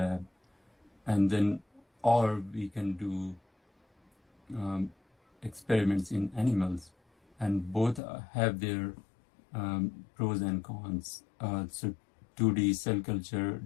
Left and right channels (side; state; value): right; drops out; at 8.0 s